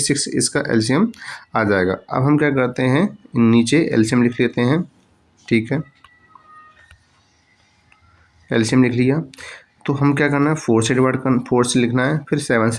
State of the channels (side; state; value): both; identical; correlation 1.00